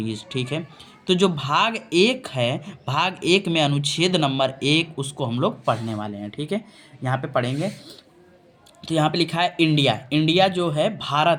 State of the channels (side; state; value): both; identical; correlation 1.00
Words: ठीक है। तो जो भाग एक है, भाग एक में अनुच्छेद नंबर 1, उसको हम लोग पढ़ने वाले हैं। ठीक है। यहाँ पे पढ़ेंगे। तो यहाँ पे लिखा है इंडिया। इंडिया जो है